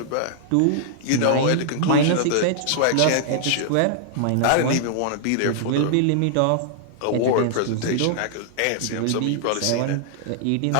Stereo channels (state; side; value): different; both; correlation -0.01